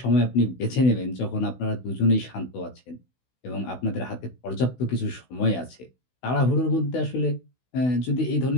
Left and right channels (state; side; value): late; right; 16 ms